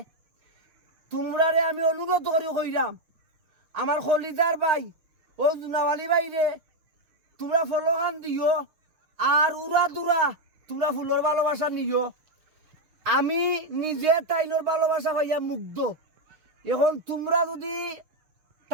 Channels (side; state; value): left; late; 6.4 ms